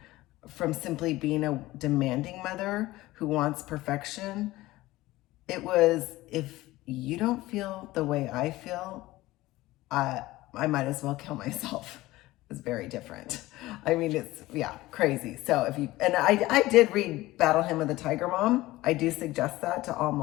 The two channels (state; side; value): quieter; right; 18.0 dB